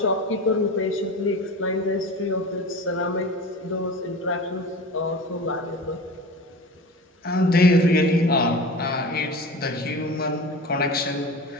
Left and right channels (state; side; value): normal; both; correlation 0.33